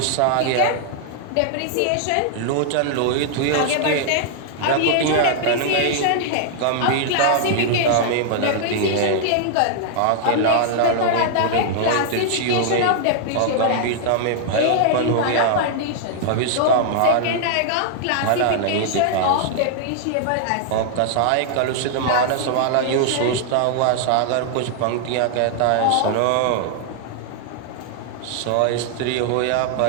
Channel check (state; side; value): different; both; correlation -0.01